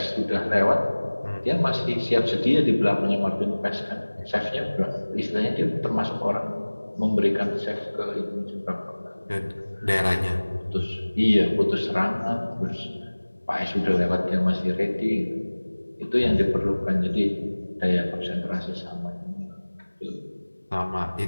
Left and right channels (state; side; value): inverted; both; correlation -1.00